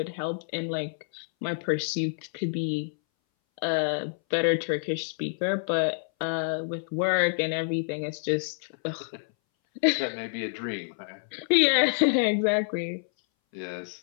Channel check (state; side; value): silent; right; 59 dB below the other